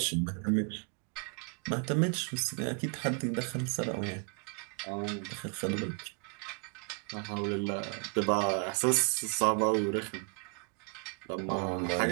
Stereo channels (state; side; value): quieter; left; 38.7 dB